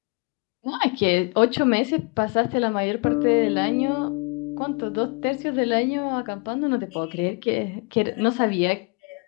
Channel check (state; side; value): quieter; right; 32.2 dB